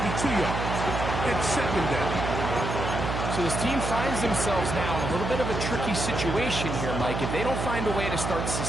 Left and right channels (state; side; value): noise; right; hum, 3 dB below the sound